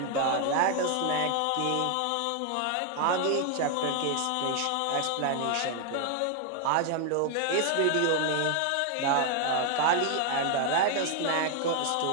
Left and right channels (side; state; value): both; different; correlation 0.00